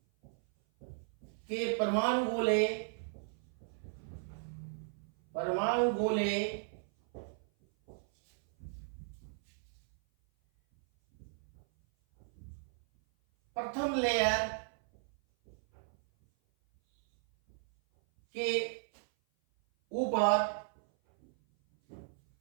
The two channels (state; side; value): silent; left; 54 dB below the other